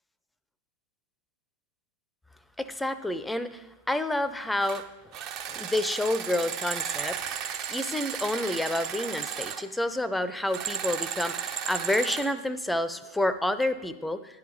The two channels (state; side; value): normal; both; correlation 0.74